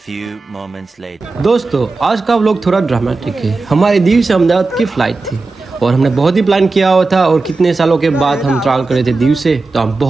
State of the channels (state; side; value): quieter; left; 3.7 dB